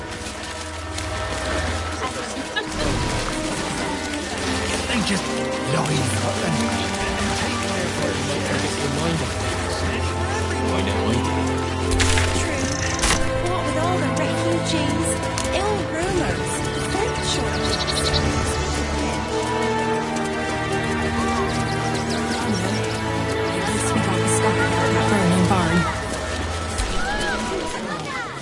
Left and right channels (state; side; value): identical; both; correlation 1.00